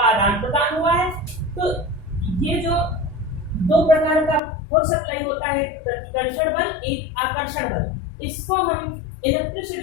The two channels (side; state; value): right; drops out; at 4.4 s